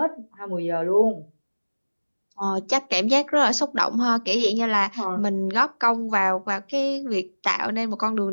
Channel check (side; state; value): both; inverted; correlation -1.00